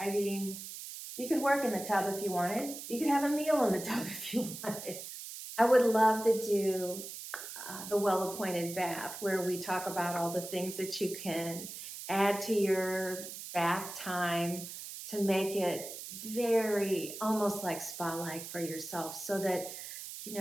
mean, you could work in the tub if you wanted. You could have a meal in the tub if you wanted. I would love to do the well-appointed bath, where we talk about all the things that you can add to your bath time to make it very almost like spa-like for yourself, so that, you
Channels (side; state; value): right; noise; hiss, 10 dB below the sound